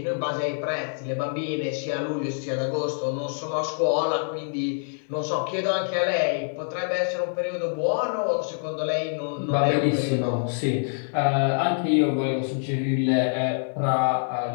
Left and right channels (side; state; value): right; silent; digital silence